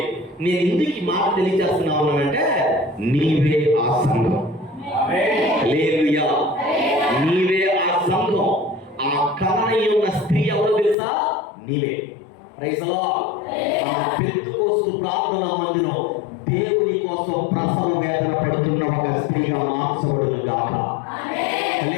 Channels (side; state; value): right; drops out; at 11.0 s